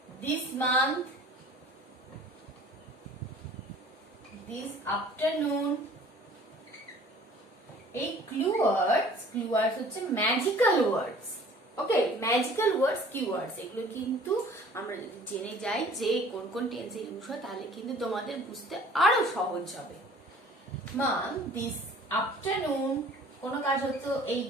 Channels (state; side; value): normal; both; correlation 0.50